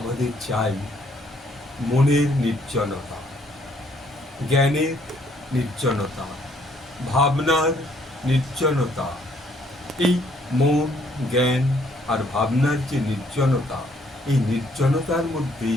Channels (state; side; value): normal; both; correlation 0.66